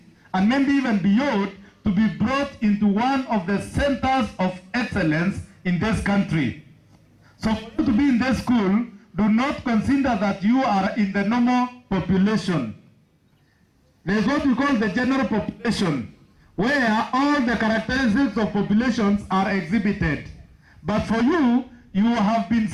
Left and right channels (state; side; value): identical; both; correlation 1.00